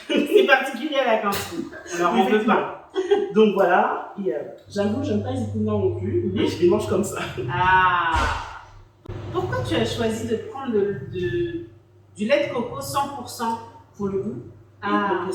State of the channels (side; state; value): both; identical; correlation 1.00